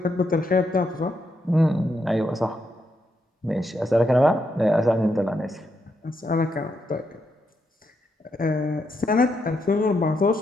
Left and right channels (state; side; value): normal; both; correlation 0.80